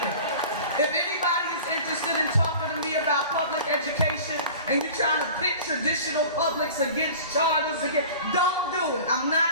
If anybody is interested in talking to me about public education and you're trying to pit traditional publics against charters, don't do it. I'm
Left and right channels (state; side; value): inverted; both; correlation -0.40